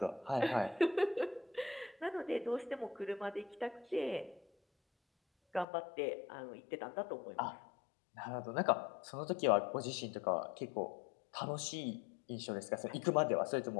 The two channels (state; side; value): drops out; right; at 5.7 s